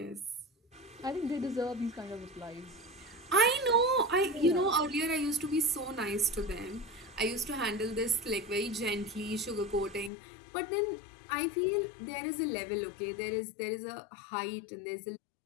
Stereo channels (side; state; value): right; drops out; at 10.1 s